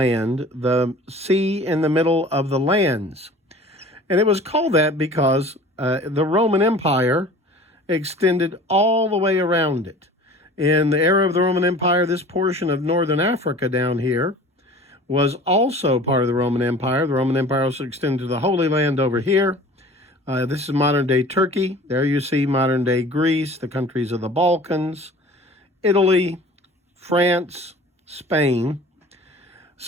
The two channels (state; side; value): normal; both; correlation 0.43